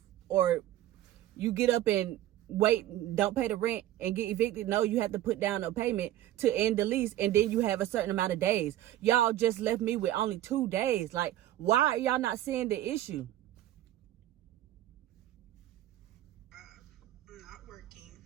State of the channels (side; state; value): left; quieter; 13.5 dB